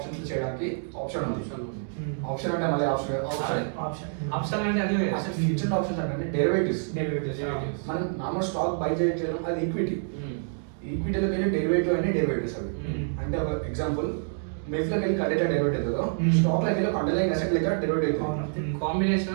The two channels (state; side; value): silent; left; digital silence